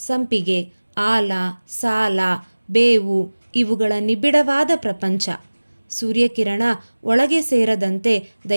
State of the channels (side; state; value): both; inverted; correlation -1.00